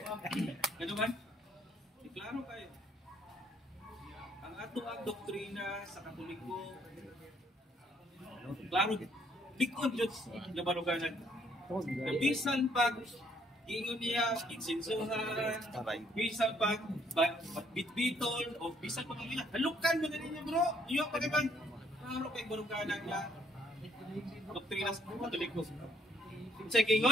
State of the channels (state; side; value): normal; both; correlation 0.67